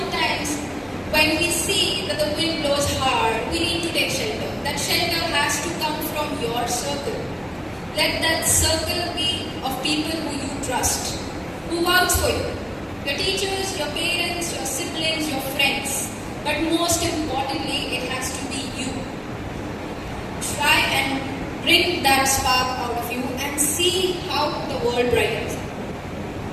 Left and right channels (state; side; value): identical; both; correlation 1.00